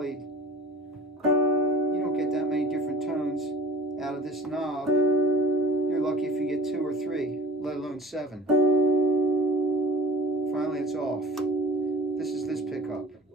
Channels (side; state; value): both; normal; correlation 0.44